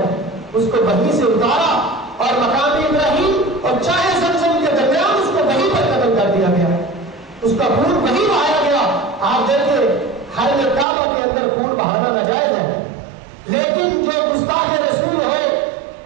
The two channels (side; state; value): left; drops out; at 10.9 s